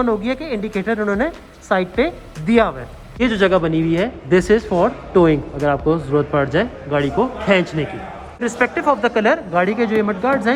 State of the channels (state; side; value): identical; both; correlation 1.00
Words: हो गई है कि इंडिकेटर उन्होंने साइड पे दिया हुआ है। ये जो जगह बनी हुई है दिस इज़ फॉर टोइंग, अगर आपको ज़रूरत पड़ जाए गाड़ी को खींचने की। रिस्पेक्टिव ऑफ द कलर गाड़ी के जो मड गार्ड्स